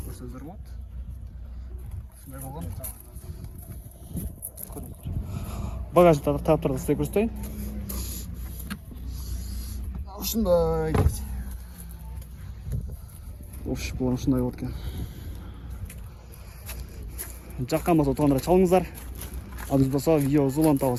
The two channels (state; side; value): identical; both; correlation 1.00